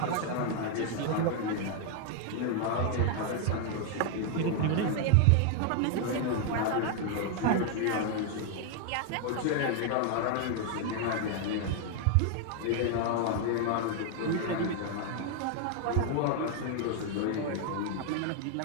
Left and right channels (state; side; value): different; both; correlation 0.00